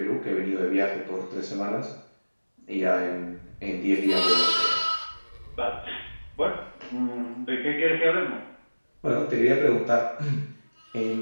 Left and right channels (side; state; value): both; inverted; correlation -1.00